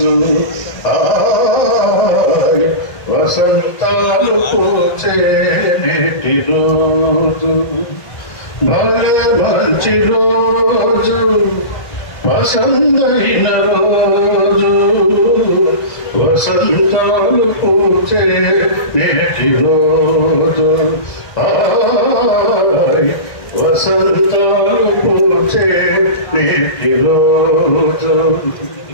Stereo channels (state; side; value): late; right; 1.5 ms